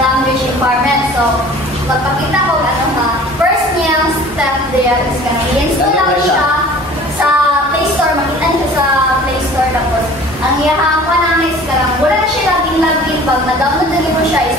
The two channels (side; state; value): both; normal; correlation 0.46